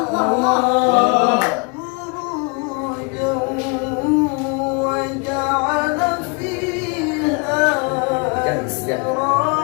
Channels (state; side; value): quieter; right; 33.9 dB